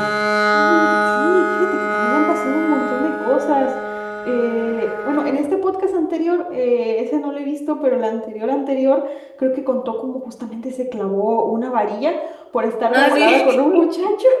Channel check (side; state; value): both; identical; correlation 1.00